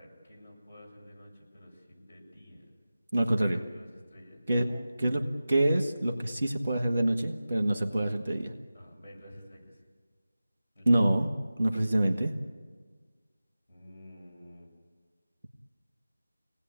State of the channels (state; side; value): inverted; both; correlation -0.95